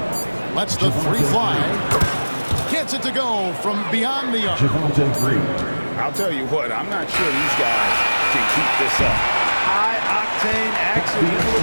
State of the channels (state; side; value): inverted; both; correlation -1.00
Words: Lets the three fly. Gets it to go from beyond the arc. I'll tell you what, I'm not sure these guys can keep this up. High-octane action.